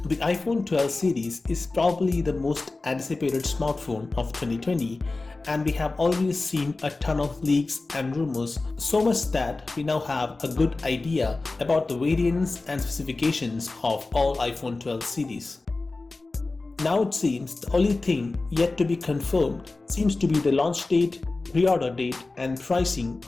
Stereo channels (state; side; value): quieter; right; 3.4 dB